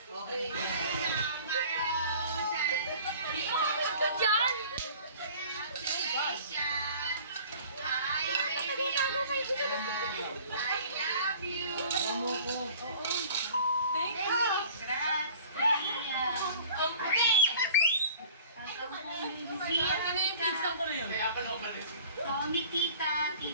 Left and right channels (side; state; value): both; inverted; correlation -0.48